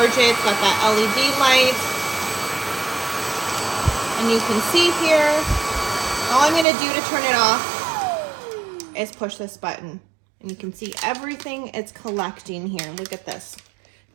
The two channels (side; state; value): left; drops out; at 6.7 s